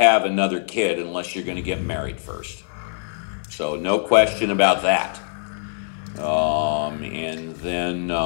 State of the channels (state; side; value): silent; right; digital silence